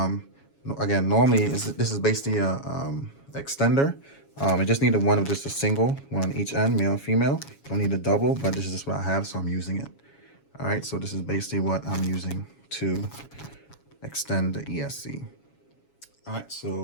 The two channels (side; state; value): right; late; 7.2 ms